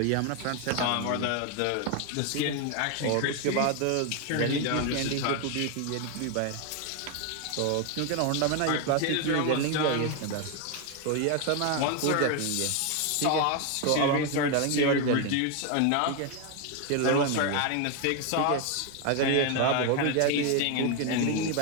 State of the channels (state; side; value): different; both; correlation 0.01